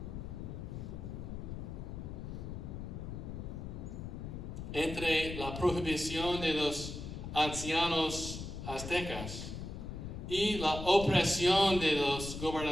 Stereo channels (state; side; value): noise; left; rumble, 7 dB below the sound